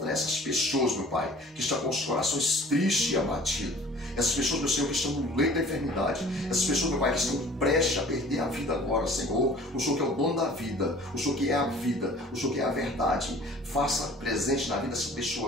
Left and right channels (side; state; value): both; normal; correlation 0.48